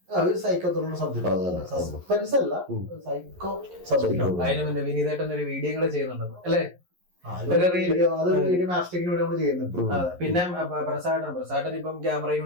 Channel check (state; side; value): late; left; 11 ms